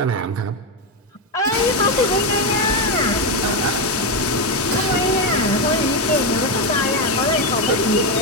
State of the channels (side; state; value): both; normal; correlation 0.09